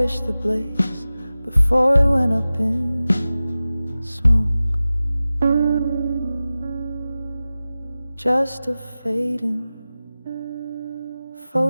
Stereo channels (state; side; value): inverted; both; correlation -0.96